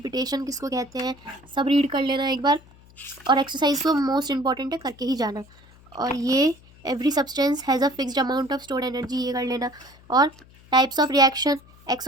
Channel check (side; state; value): left; noise; hum, 25 dB below the sound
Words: किसको कहते हैं, सब रीड कर लेना एक बार। और एक्सरसाइज तो मोस्ट इंपॉर्टेंट है, करके ही जाना। और ये every substance has a fixed amount of stored energy, ये कर लेना। और types of reaction,